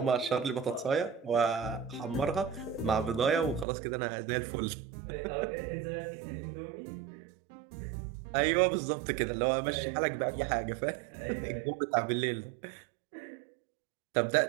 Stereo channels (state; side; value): drops out; left; at 3.7 s